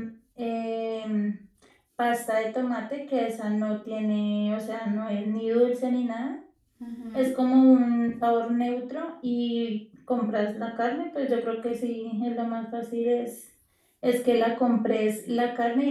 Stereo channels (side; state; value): both; identical; correlation 1.00